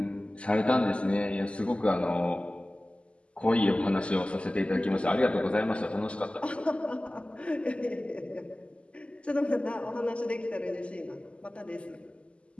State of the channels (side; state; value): right; late; 0.056 ms